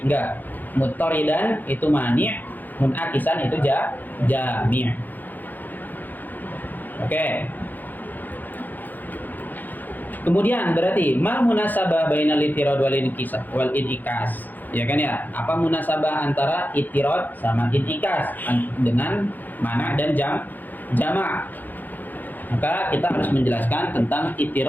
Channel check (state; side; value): late; right; 0.085 ms